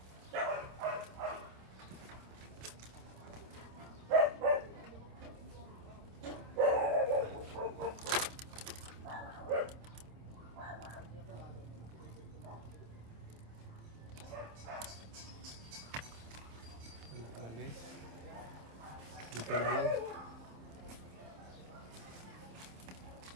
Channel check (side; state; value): left; late; 27 ms